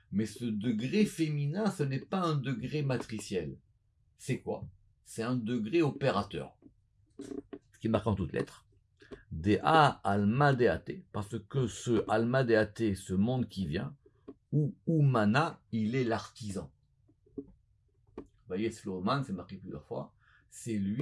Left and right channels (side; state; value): both; identical; correlation 1.00